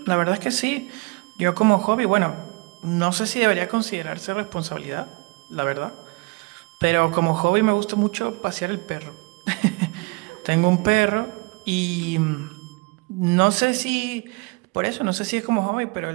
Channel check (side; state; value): left; quieter; 27.6 dB